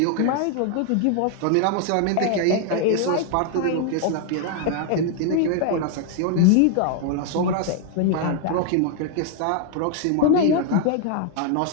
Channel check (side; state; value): both; different; correlation 0.00